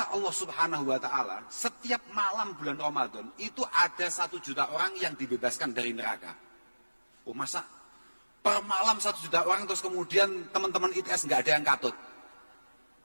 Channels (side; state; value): both; inverted; correlation -1.00